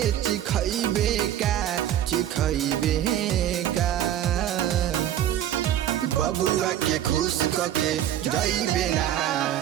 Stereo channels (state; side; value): quieter; left; 11.5 dB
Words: चिखैबे का बबुआ के खुश करके जाइबे ना